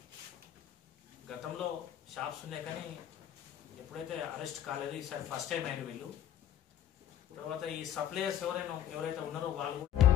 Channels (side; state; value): right; quieter; 10.7 dB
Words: గతంలో షాప్స్ ఉన్నాయి కానీ ఎప్పుడైతే అరెస్ట్ కాలేదు, ఈసారి ఫస్ట్ టైం అయిన వీళ్ళు. తర్వాత ఈ సప్లయర్స్ ఎవరైతే ఉన్నారో వాళ్ళు